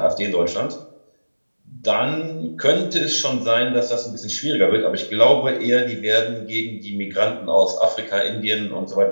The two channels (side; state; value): both; inverted; correlation -1.00